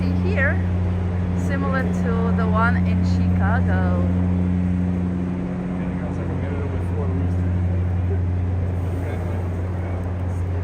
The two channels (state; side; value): identical; both; correlation 1.00